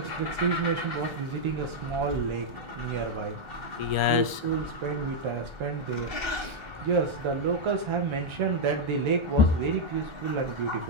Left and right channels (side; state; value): left; late; 1.4 ms